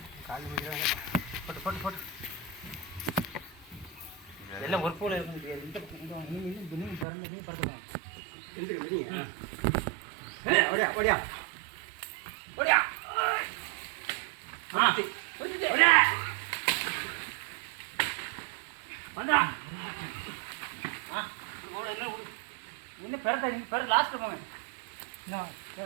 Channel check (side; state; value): left; drops out; at 7.1 s